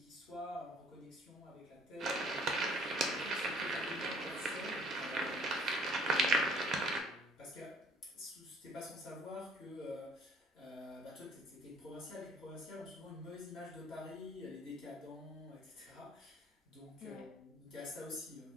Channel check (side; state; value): both; normal; correlation 0.57